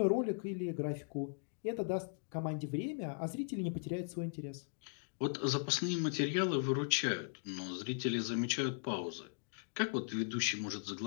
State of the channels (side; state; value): right; silent; digital silence